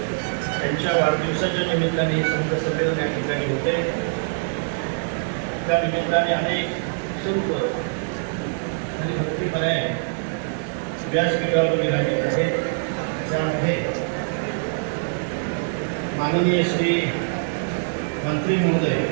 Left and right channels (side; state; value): left; silent; digital silence